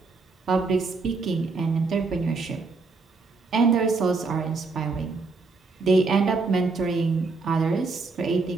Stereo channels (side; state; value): left; quieter; 4.1 dB